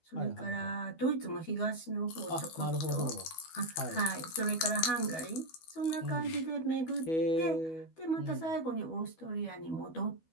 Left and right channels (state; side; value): late; right; 12 ms